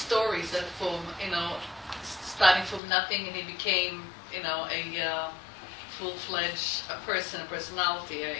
that from, starting from nothing and he became, a full-fledged personality,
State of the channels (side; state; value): right; drops out; at 2.8 s